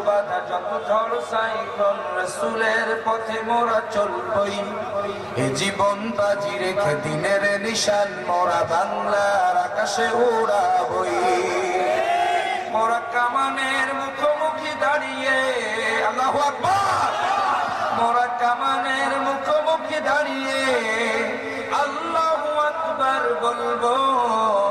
বাধা যত ঝড় সাইক্লোন, রাসূলের পথে মোরা চলবই। এ জীবন বাজি রেখে দিনের নিশান মোরা বাংলার আকাশে উড়াবই। মোরা কামানের মুখোমুখি দাঁড়িয়ে, আল্লাহু আকবার, মোরা কামানের মুখোমুখি দাঁড়িয়ে আল্লাহু আকবার বলবো।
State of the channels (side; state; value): both; identical; correlation 1.00